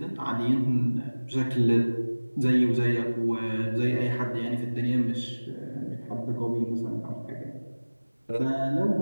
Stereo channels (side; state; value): both; inverted; correlation -1.00